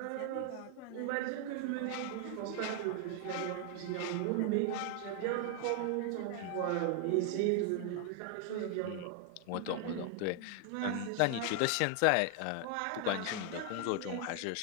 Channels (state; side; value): different; both; correlation 0.00